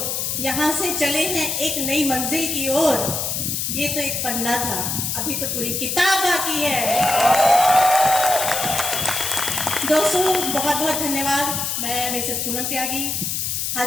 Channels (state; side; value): noise; left; hiss, 1 dB below the sound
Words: यहाँ से चले हैं एक नई मंजिल की ओर। ये तो एक पन्ना था, अभी तो पूरी किताब बाकी है। दोस्तों बहुत बहुत धन्यवाद। मैं मिसेस पूनम त्यागी। आज